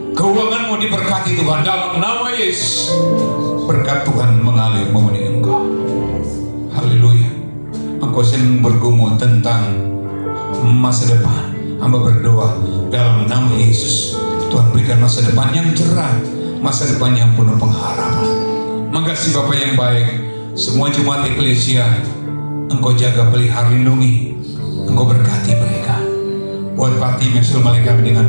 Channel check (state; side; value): inverted; both; correlation -1.00